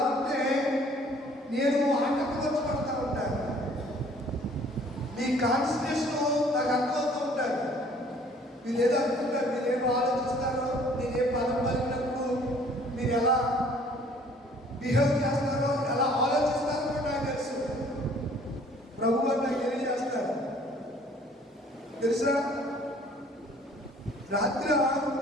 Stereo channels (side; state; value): both; normal; correlation 0.56